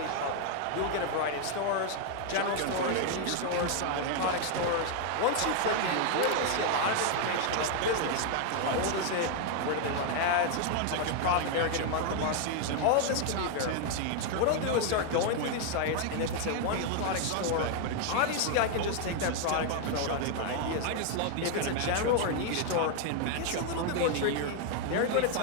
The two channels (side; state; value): both; different; correlation 0.00